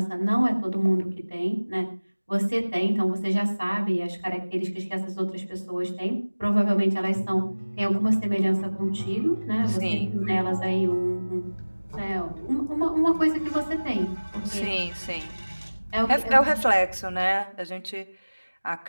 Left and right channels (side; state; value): both; inverted; correlation -1.00